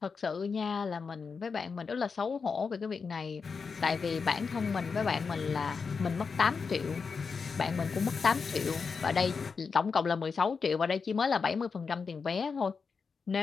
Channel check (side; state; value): right; quieter; 5.3 dB